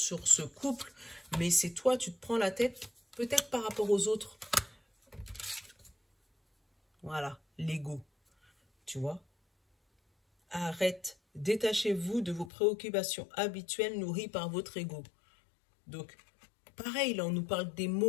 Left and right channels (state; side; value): drops out; right; at 12.5 s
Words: ce couple, mais c'est toi, tu te prends la tête, peut-être par rapport aux autres. Voilà, l'ego, tu vois. Arrête, détachez-vous de vos préoccupations habituelles nourries par votre ego. Donc, pareil, là, on nous parle des